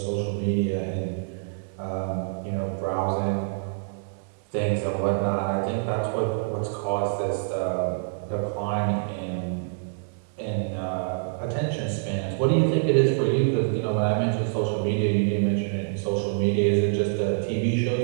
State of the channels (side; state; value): left; silent; digital silence